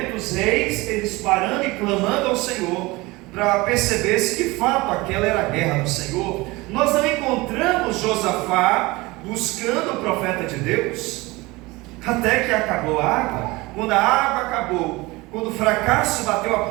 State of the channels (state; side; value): quieter; left; 22.2 dB